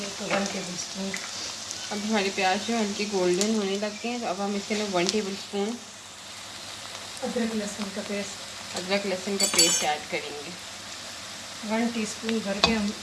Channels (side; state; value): both; identical; correlation 1.00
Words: तो 1 टेबल स्पून। अब हमारे प्याज जो हल्के गोल्डन होने लग गए हैं, तो अब हम इसके अंदर 1 टेबल स्पून अदरक लहसुन का पेस्ट, अदरक लहसुन का पेस्ट ऐड करेंगे। 1 टीस्पून भर के हम